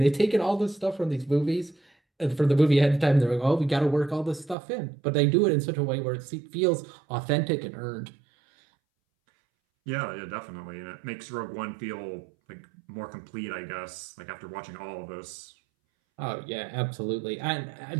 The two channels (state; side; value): drops out; left; at 4.5 s